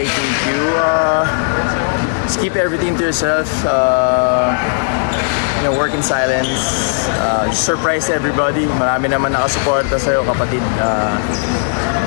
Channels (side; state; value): right; silent; digital silence